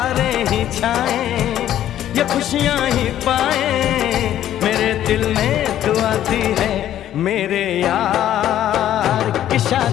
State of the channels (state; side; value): quieter; right; 11.8 dB